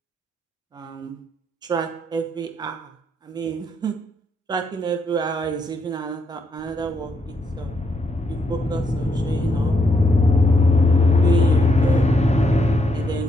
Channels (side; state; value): both; normal; correlation 0.77